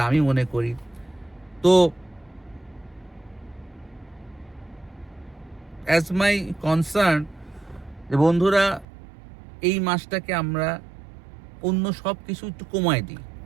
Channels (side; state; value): left; drops out; at 8.8 s